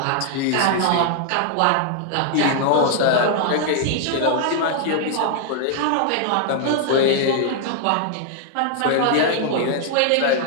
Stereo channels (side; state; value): both; different; correlation 0.00